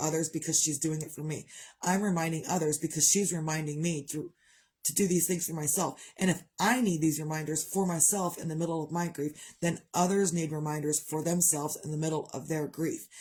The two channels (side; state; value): both; identical; correlation 1.00